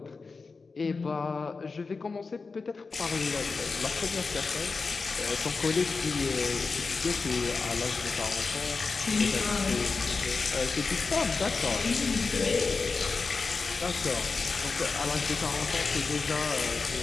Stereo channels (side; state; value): right; quieter; 4.4 dB